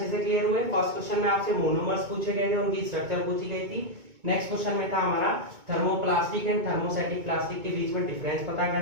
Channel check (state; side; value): late; left; 2.2 ms